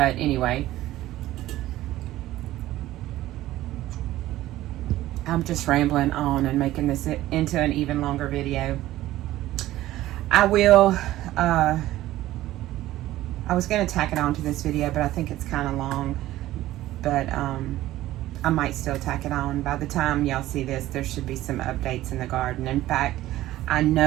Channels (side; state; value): left; quieter; 15.2 dB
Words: anyway, I'm just rambling on and making this into an even longer video. I was going to tack it on to this video, but I think it's kind of long. But I might still tack it on. By the time y'all see this, there should be some updates in the garden. In fact, I